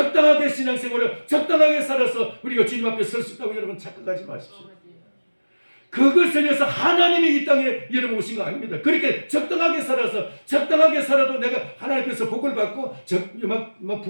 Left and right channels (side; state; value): both; inverted; correlation -1.00